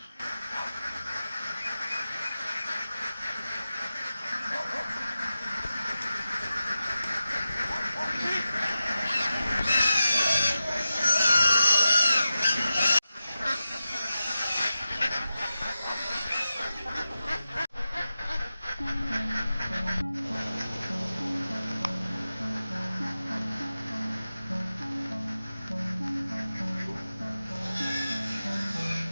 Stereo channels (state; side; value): inverted; both; correlation -0.93